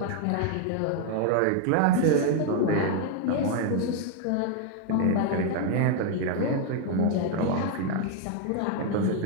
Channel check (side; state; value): both; different; correlation 0.01